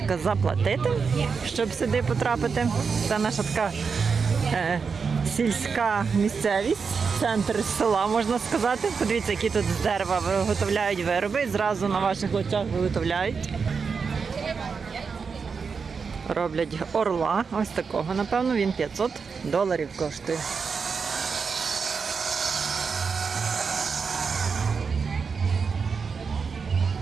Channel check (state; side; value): quieter; left; 5.5 dB